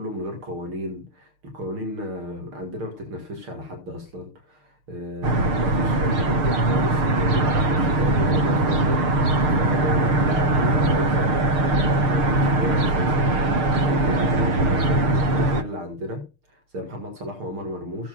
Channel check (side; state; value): left; late; 6.6 ms